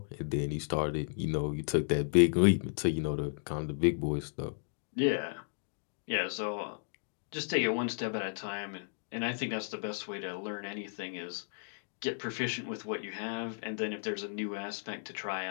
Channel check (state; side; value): silent; right; digital silence